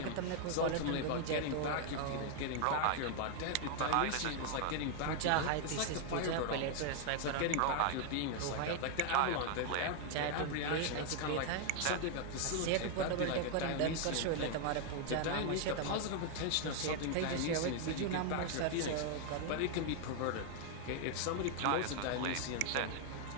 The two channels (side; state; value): both; different; correlation 0.00